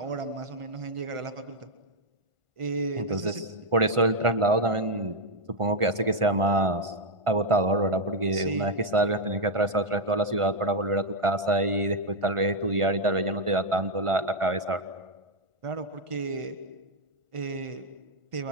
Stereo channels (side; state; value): left; late; 1.5 ms